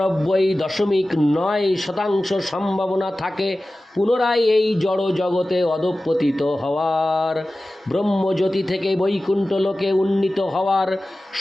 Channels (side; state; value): both; normal; correlation 0.96